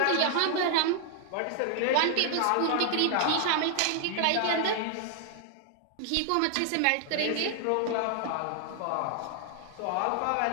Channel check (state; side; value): different; both; correlation 0.00